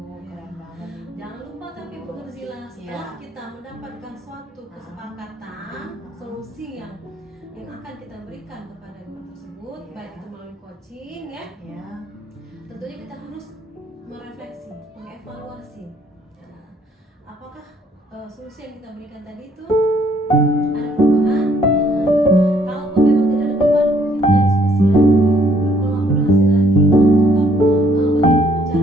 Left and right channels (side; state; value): both; normal; correlation 0.65